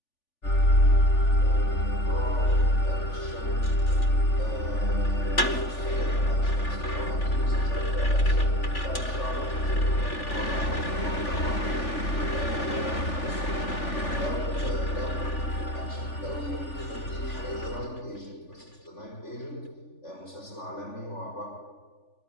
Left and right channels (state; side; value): late; right; 3.4 ms